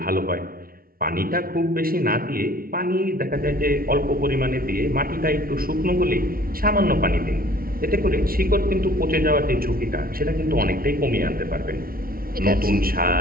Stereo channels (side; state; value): left; late; 0.43 ms